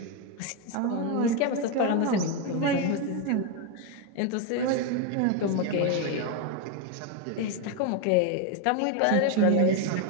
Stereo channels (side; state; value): both; different; correlation 0.02